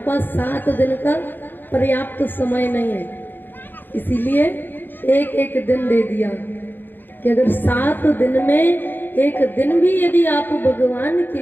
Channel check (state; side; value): late; right; 0.092 ms